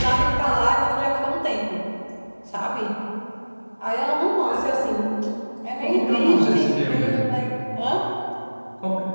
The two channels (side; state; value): both; inverted; correlation -1.00